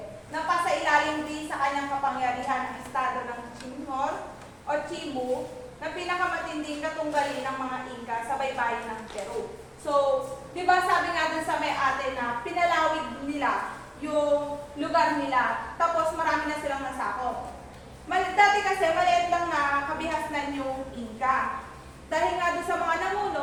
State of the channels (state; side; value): identical; both; correlation 1.00